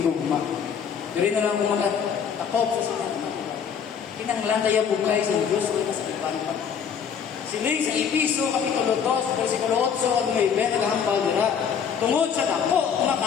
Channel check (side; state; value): right; quieter; 7.3 dB